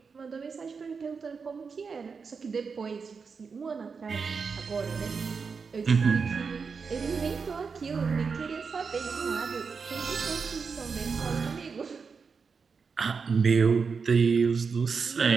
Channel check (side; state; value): left; quieter; 5.3 dB